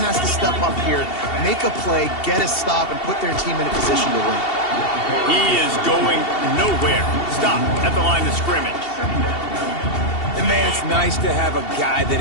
to step up here, make a play, get a stop, and put their team in a position to win. He is going nowhere. Stop at the line of scrimmage. And, man, it's nice to have a guy that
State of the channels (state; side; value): late; right; 2.7 ms